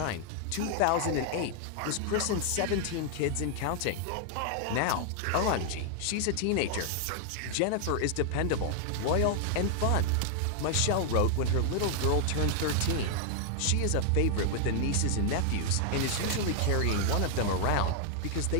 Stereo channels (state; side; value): different; both; correlation 0.00